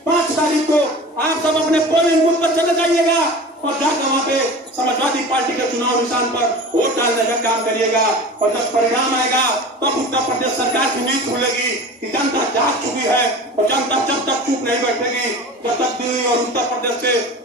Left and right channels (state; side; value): normal; both; correlation 0.36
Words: 5 तारीख को आप सब अपने पोलिंग बूथ पर चले जाइएगा और जाकर वहाँ पे समाजवादी पार्टी के चुनाव निशान पर वोट डालने का काम करिएगा, और जब परिणाम आएगा तब उत्तर प्रदेश सरकार की नींद खुलेगी कि जनता जाग चुकी है, और जनता जब तक चुप नहीं बैठेगी, जब तक दिल्ली और उत्तर प्रदेश से